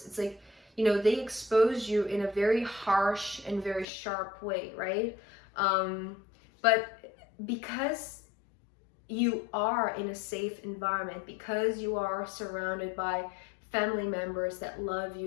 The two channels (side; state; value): right; drops out; at 3.9 s